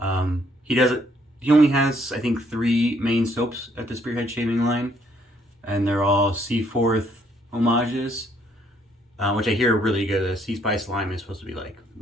He only has, I think, 3 main soaps at the Spearhead Shaving line, and they're all Seaforth homages, which I hear are really good. The Sea Spice Lime is supposed to be like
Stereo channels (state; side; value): normal; both; correlation 0.68